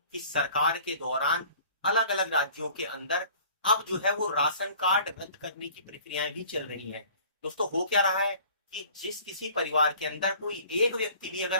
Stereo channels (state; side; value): inverted; both; correlation -0.49